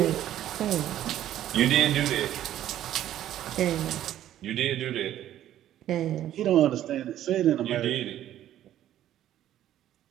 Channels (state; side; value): quieter; left; 12.2 dB